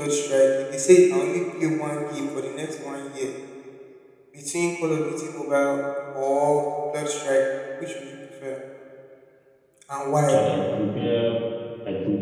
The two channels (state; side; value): identical; both; correlation 1.00